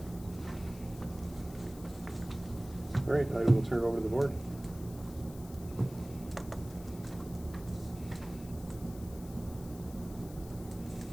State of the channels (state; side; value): noise; left; hiss, 19 dB below the sound